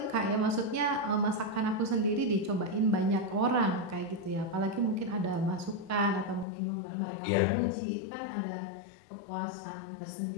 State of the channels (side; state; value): right; drops out; at 6.5 s